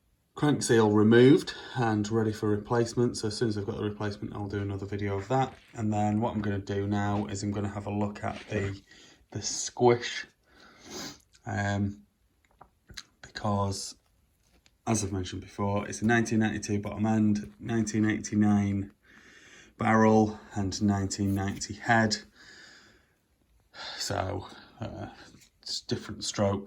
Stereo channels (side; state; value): both; identical; correlation 1.00